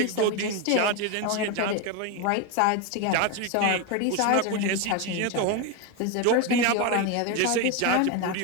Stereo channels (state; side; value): different; both; correlation 0.02